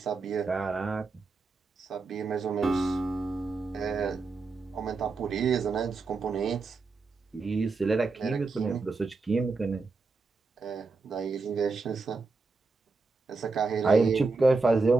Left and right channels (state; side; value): quieter; left; 4.0 dB